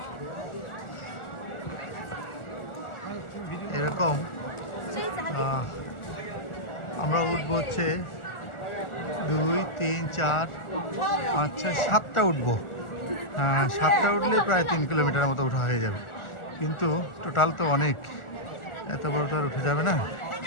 এরকম আমরা উঠবো হচ্ছে 2, 3, 4, 5, 6, 7টা উঠবো। 7টা উঠলে প্রায় 3 কিলোমিটারের মতো উঠা হয়ে যাবে, কিন্তু টোটাল তো অনেক, এত বড় তো আর উঠে যাবে না,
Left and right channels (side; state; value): right; late; 1.4 ms